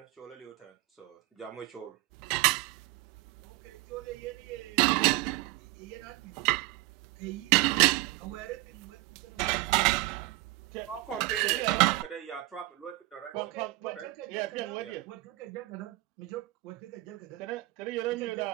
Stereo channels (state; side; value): quieter; left; 19.7 dB